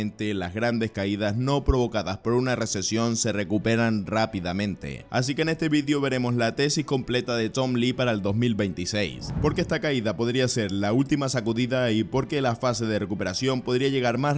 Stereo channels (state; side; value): identical; both; correlation 1.00